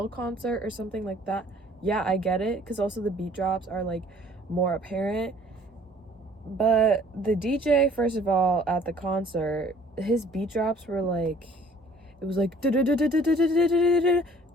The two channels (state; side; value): normal; both; correlation 0.55